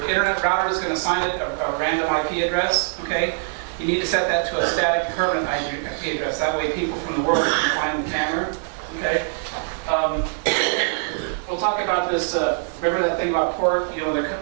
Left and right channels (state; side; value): silent; left; digital silence